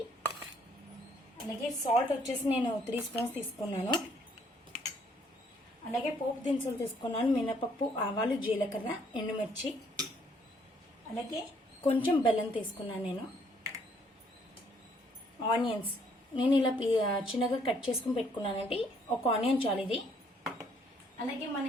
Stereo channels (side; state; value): both; normal; correlation 0.66